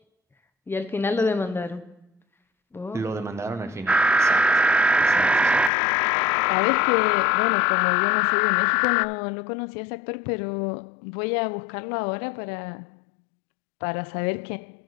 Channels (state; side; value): drops out; right; at 5.7 s